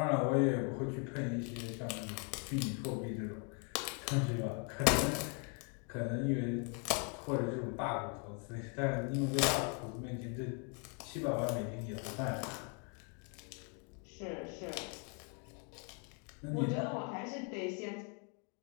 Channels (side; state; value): right; quieter; 38.3 dB